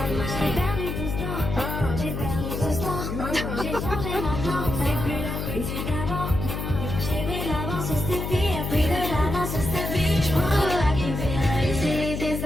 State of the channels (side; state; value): left; noise; hum, 4 dB below the sound